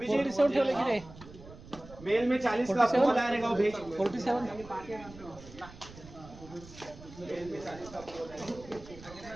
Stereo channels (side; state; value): right; noise; rumble, 18 dB below the sound